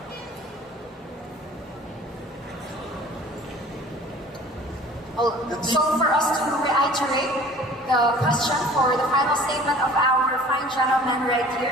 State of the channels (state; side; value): normal; both; correlation 0.48